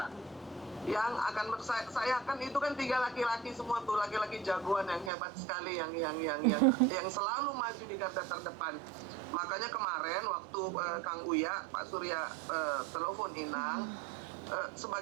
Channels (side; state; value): left; drops out; at 5.1 s